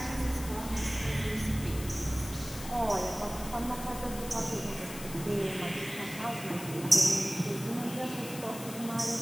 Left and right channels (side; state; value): left; noise; hiss, 12 dB below the sound